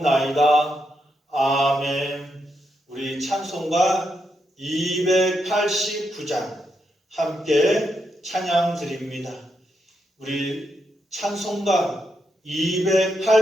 아멘. 우리 찬송가 289장 함께 찬양 드립니다. 우리 찬송가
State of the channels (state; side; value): normal; both; correlation 0.82